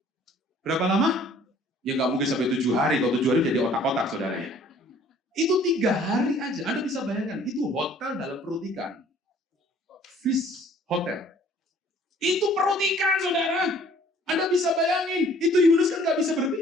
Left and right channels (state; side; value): normal; both; correlation 0.55